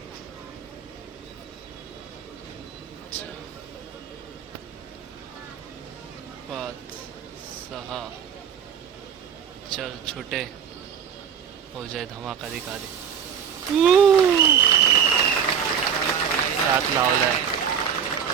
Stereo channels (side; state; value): left; quieter; 7.7 dB